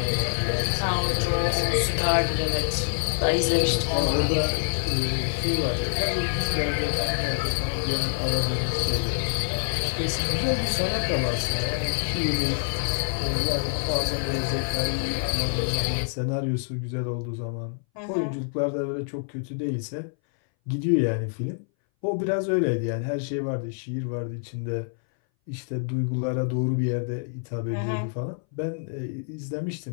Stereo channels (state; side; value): silent; right; 60 dB below the other